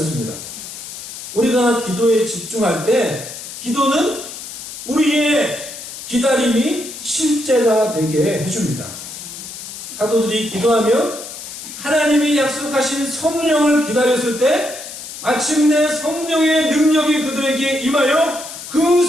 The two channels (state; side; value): noise; left; hiss, 11 dB below the sound